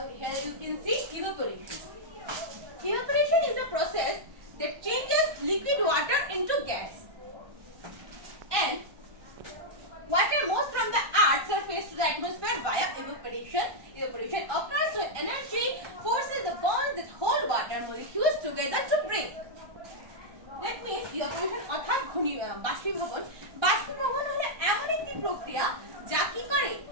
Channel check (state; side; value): late; left; 1.2 ms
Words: here you can see evaporation. Evaporation is a process that changes liquid water into gas, and water moves from the earth's surface to the atmosphere via evaporation. Evaporation occurs when energy forces the bonds that hold water molecules together to break. That means evaporation অর্থাৎ বাষ্পীভবন। বাষ্পীভবন হলো এমন একটি প্রক্রিয়া যা কি করে,